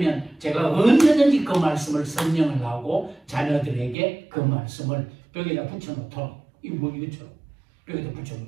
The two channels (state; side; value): drops out; left; at 4.0 s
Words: 제가 언제든지 그 말씀을 설명을 하고 자녀들에게 그 말씀을 벽에다 붙여놓도록 이것처럼 벽에다